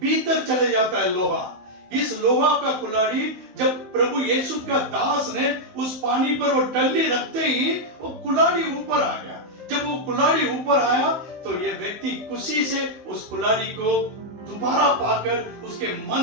भीतर चले जाता है लोहा। इस लोहा का कुल्हाड़ी जब प्रभु यीशु का दास ने उस पानी पर वो टल्ली रखते ही वो कुल्हाड़ी ऊपर आ गया। जब वो कुल्हाड़ी ऊपर आया तो ये व्यक्ति खुशी से उस कुल्हाड़ी को दोबारा पाकर उसके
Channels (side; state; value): left; late; 16 ms